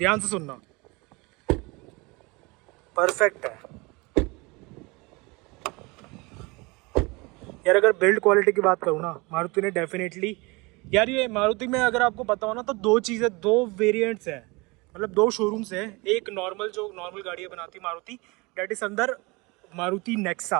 से सुनना, परफेक्ट है यार। अगर बिल्ड क्वालिटी की बात करूँ ना, मारुति ने डेफिनेटली यार, ये मारुति में अगर आपको पता हो ना तो दो वेरिएंट्स है, मतलब दो शोरूम्स है। एक नॉर्मल जो नॉर्मल गाड़ियाँ बनाती मारुति, डेट इज अंदर Maruti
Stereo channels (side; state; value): left; quieter; 25.9 dB